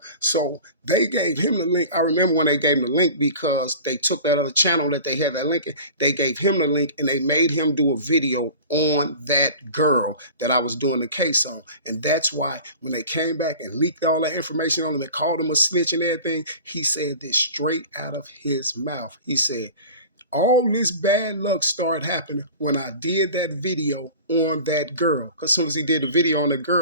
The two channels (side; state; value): both; inverted; correlation -0.39